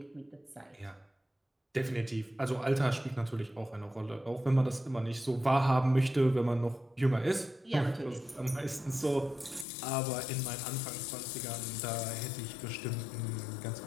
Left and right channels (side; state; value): right; drops out; at 9.7 s